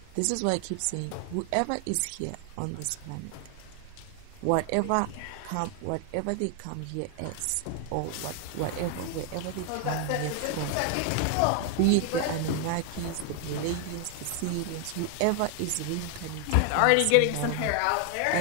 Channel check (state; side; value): different; both; correlation 0.00